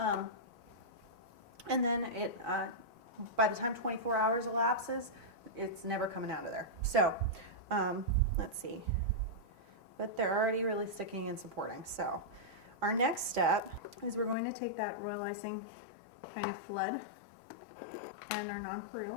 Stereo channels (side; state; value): right; drops out; at 14.4 s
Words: And then by the time 24 hours elapses, it's never coming out of there. So let's see. But they're already really sticking and supporting. So our next step is we're going to take that royal icing kind of flood and our